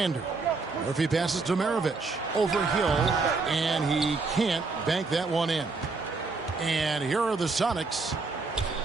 Murphy passes to Maravich. Over Hill, and he can't bank that one in. And here are the Sonics.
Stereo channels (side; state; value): left; quieter; 4.0 dB